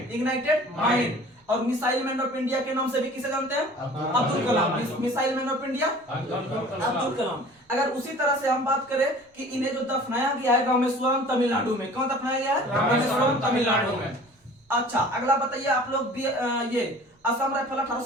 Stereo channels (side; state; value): both; normal; correlation 0.46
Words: ignited mind. और मिसाइल मैन ऑफ इंडिया के नाम से भी किसे जानते हैं? Abdul Kalam. Missile man of India Abdul Kalam. अगर उसी तरह से हम बात करें कि इन्हें जो दफनाया गया है रामेश्वरम तमिलनाडु में, कौन दफनाया गया है? रामेश्वरम तमिलनाडु में। अच्छा, अगला बताइए आप लोग, ये असम राइफल